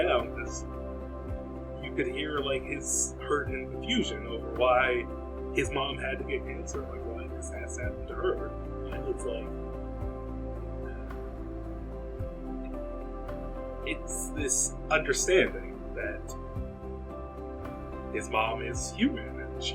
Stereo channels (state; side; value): identical; both; correlation 1.00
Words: because you could hear like his hurt and confusion over why his mom had to get cancer, like why this has happened to her. And it's like, it's this understanding that his mom is human and she